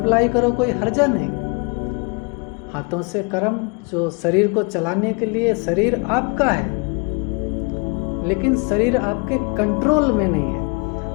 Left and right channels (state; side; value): quieter; right; 32.9 dB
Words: करो, कोई हर्जा नहीं। हाथों से कर्म, जो शरीर को चलाने के लिए, शरीर आपका है लेकिन शरीर आपके कंट्रोल में नहीं